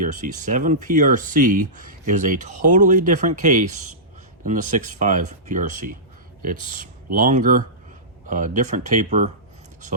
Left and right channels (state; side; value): normal; both; correlation -0.18